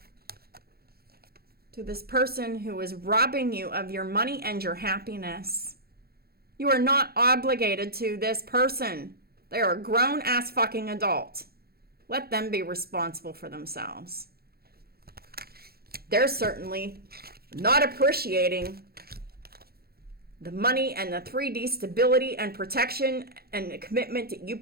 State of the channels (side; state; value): left; late; 0.45 ms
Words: To this person who is robbing you of your money and your happiness. You are not obligated to this person. They are a grown-ass fucking adult. Let them be responsible for themselves. They're certainly not appreciating the money and the 3D stability and protection and the commitment that you